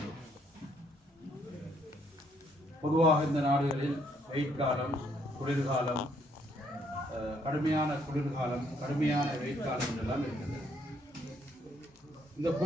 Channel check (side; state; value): both; normal; correlation 0.69